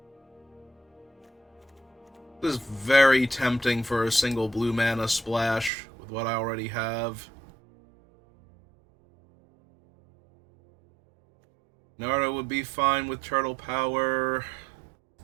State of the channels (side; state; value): left; drops out; at 5.7 s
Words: This is very tempting for a single blue mana splash with what I already have. Naruto would be fine with Turtle Power.